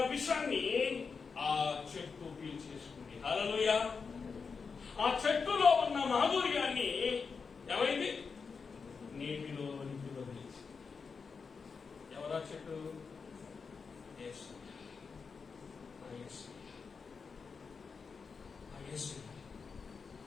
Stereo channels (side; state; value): right; quieter; 5.3 dB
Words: విషాన్ని ఆ చెట్టు పీల్చేసుకుంది. హల్లెలూయా. ఆ చెట్టులో ఉన్న మాధుర్యాన్ని ఏమైంది? నీటిలో వదిలేసి. ఎవరా చెట్టు? యేసు.